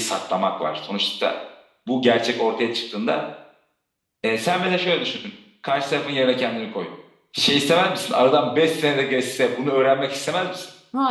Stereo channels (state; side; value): identical; both; correlation 1.00